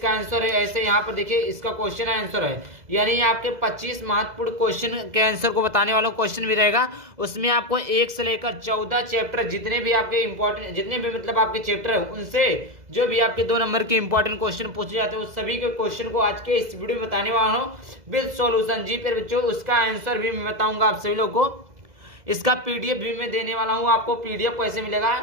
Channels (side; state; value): left; late; 2.0 ms